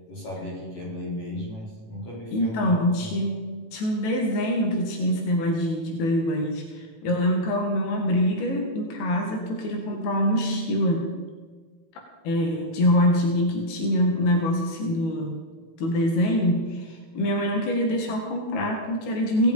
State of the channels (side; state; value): right; late; 18 ms